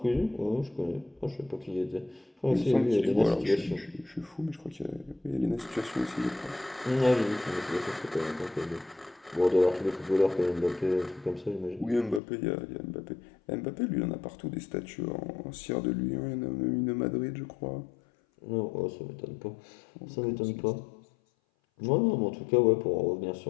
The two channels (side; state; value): right; drops out; at 12.2 s